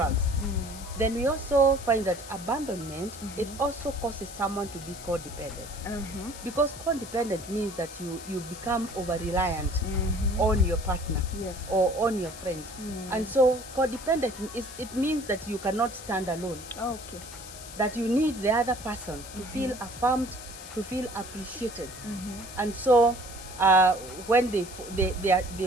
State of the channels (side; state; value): left; noise; hiss, 14 dB below the sound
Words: Then we also find that abandonment, it also causes someone to be codependent, because codependent means that you become over-reliant on your partner or on your friend. And so codependent, it means that you cannot stand alone. That you need the other person to feel affirmed, to feel appreciated. And so when